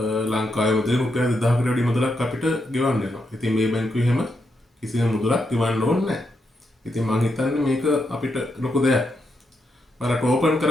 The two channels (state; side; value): normal; both; correlation 0.82